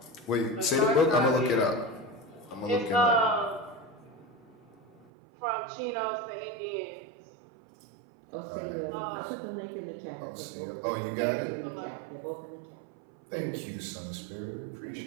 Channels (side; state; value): left; drops out; at 5.1 s